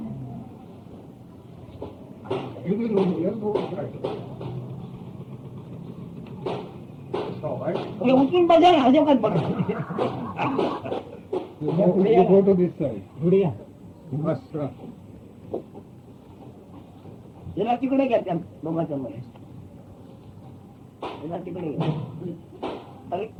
You will know, you'll go right. All right. हे उचलून बघा ना अजिबात बघा You go to this side. Gudiya. You must याला तिकडे घ्या त्या दोघांच्या मध्ये याला तिकडे घ्या अरे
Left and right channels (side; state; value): both; identical; correlation 1.00